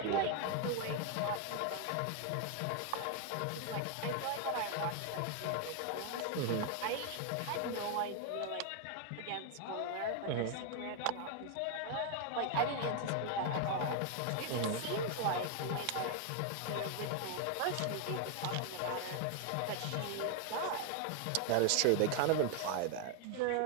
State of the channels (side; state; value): both; different; correlation 0.00